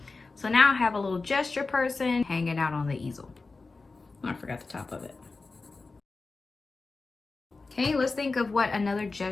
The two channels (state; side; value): quieter; right; 3.8 dB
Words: So now I have a little gesture person hanging out on the easel. Oh, I forgot the top of it. Okay, let's think of what another